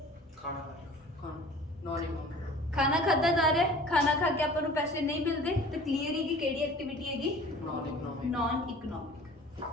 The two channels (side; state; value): both; normal; correlation 0.45